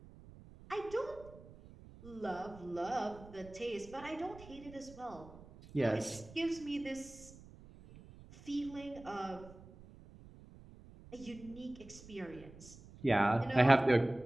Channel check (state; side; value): noise; right; rumble, 19 dB below the sound